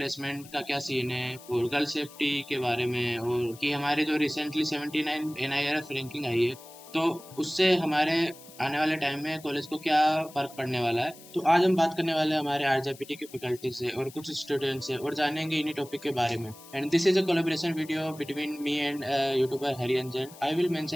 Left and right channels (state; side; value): noise; left; hiss, 20 dB below the sound